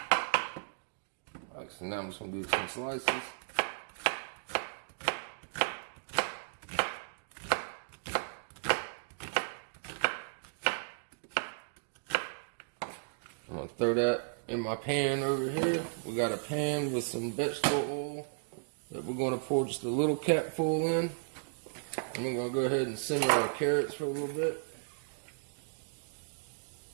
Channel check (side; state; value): left; silent; digital silence